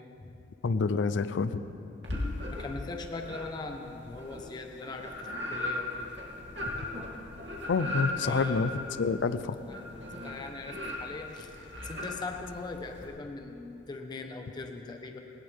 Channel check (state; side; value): quieter; right; 3.3 dB